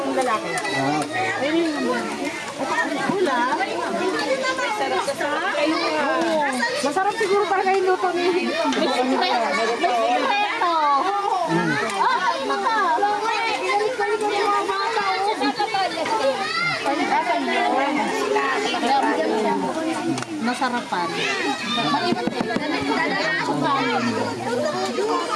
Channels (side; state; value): both; identical; correlation 1.00